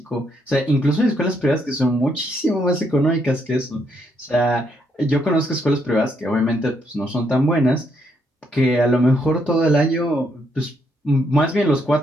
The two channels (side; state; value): both; normal; correlation 0.75